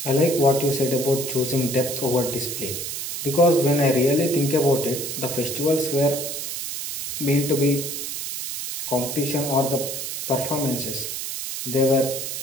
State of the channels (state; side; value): noise; right; hiss, 5 dB below the sound